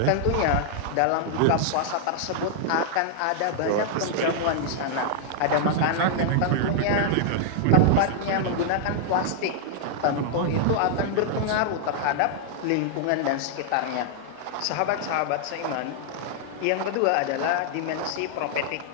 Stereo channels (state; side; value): different; both; correlation -0.01